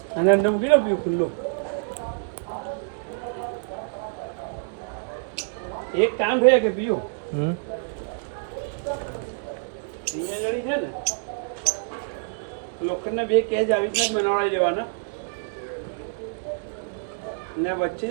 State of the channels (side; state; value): left; silent; digital silence